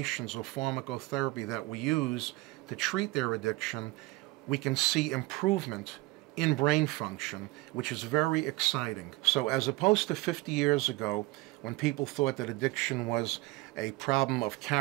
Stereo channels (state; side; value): quieter; left; 21.1 dB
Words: or pharmacotherapy that we use to treat their addiction. We can see improvement in brain function, which is very exciting. So as opposed to 50 years ago, when people thought that addiction was a problem of